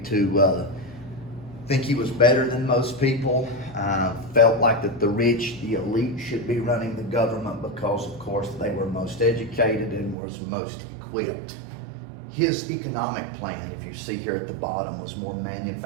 think he was better than most people, felt like that the rich, the elite, should be running the government because, of course, they were most educated and was most equipped. His economic plan, if you see here at the bottom, was more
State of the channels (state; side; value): drops out; left; at 10.2 s